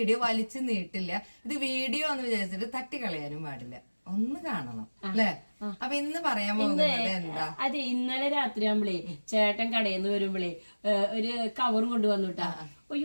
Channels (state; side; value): inverted; both; correlation -1.00